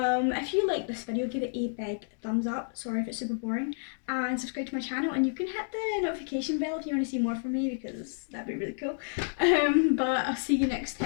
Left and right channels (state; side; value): silent; right; digital silence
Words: if you like this video, give it a big thumbs up. Sorry if it's super boring, and subscribe to my channel, and you can hit the notification bell if you want to see more from me, because that'd be really cool. But I'll see you next